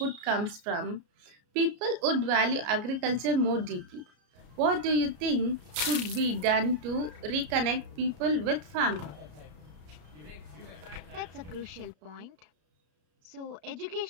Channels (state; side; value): late; left; 33 ms